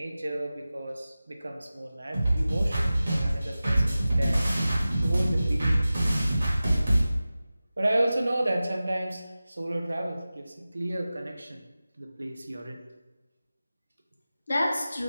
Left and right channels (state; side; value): inverted; both; correlation -0.96